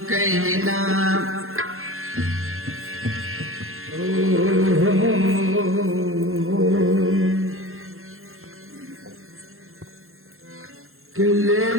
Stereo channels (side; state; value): left; late; 0.61 ms